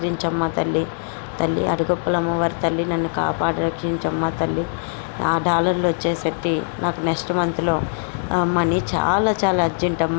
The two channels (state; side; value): silent; right; digital silence